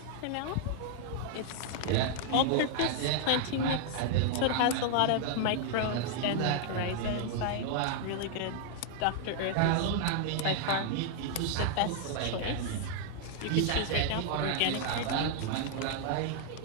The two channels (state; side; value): different; both; correlation -0.01